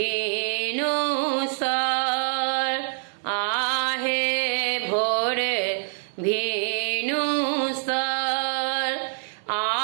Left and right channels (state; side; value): silent; left; 62 dB below the other